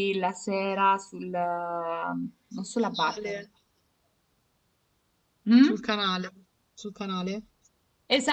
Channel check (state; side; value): identical; both; correlation 1.00